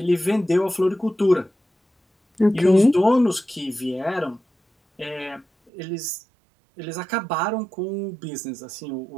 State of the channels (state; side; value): drops out; left; at 5.7 s